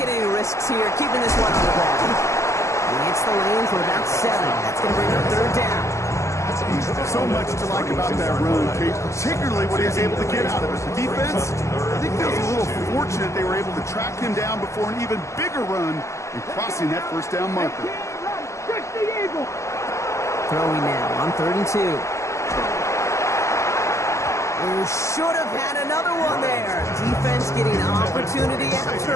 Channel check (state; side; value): late; right; 0.14 ms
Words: any risks here, keeping this one on the ground. He hits the lane for about 7. That's going to bring up third down. So much to like about that run, Kate, particularly what he was able to get out of it. The defense, I think feels a little fortunate they were able to track him down before an even bigger run and crossing that first down marker. Throwing now on 3rd and 2. Oh, should have had another one there. Defense getting opportunity